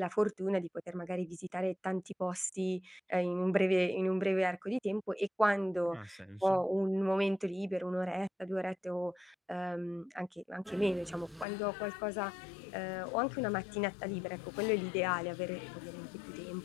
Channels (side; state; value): right; drops out; at 11.5 s